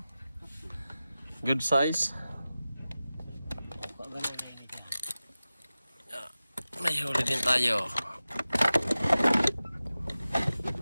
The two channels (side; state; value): both; inverted; correlation -0.95